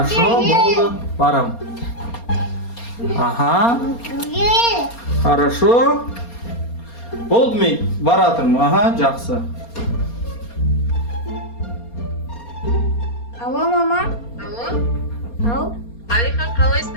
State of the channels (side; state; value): right; late; 4.3 ms